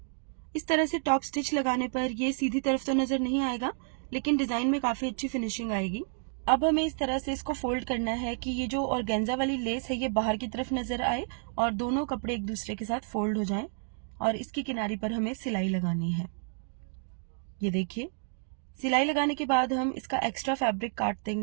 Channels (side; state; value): left; silent; digital silence